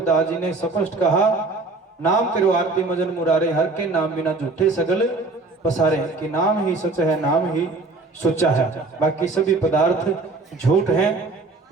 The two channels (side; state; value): left; quieter; 3.5 dB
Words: जी ने स्पष्ट कहा, नाम तेरो आरती मजन मुरारे, हर के नाम बिना झूठे सगल पसारे। कि नाम ही सच है, नाम ही सच्चा है, बाकी सभी पदार्थ झूठ हैं।